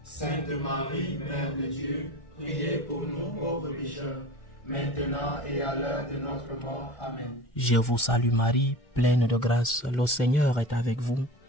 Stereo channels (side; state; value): right; late; 1.4 ms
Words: Sainte Marie, Mère de Dieu, priez pour nous pauvres pécheurs, maintenant et à l'heure de notre mort. Amen. Je vous salue Marie, pleine de grâce, le Seigneur est avec vous.